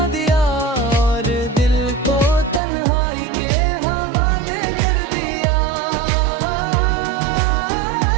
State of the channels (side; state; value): left; drops out; at 2.6 s